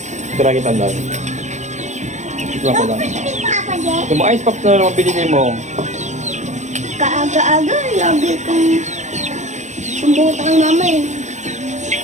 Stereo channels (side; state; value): left; late; 0.34 ms